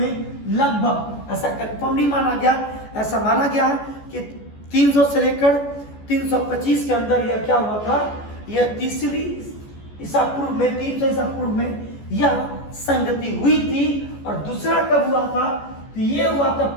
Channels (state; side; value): late; right; 14 ms